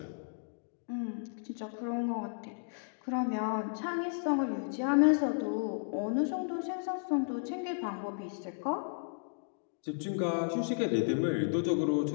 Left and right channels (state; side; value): silent; right; digital silence